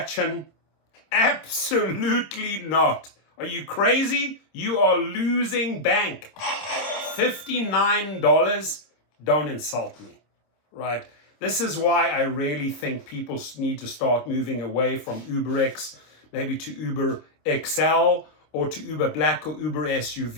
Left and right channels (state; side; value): late; right; 26 ms